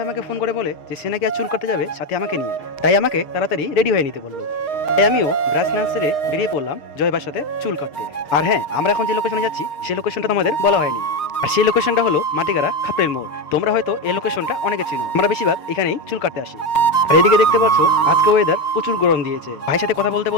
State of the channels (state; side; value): late; right; 6.5 ms